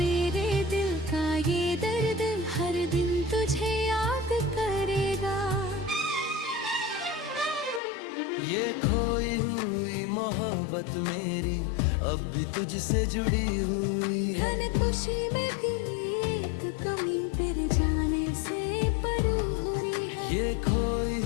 दिल का ये दर्द हर दिन तुझे याद करेगा। ये खोई हुई मोहब्बत मेरी अब भी तुझसे जुड़ी हुई है। धन खुशी में भी एक कमी तेरे जाने से परू हो रही है। ये खोई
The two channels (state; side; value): drops out; right; at 7.8 s